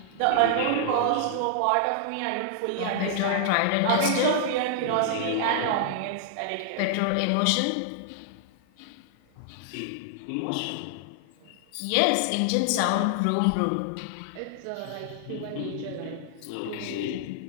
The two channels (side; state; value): both; different; correlation -0.01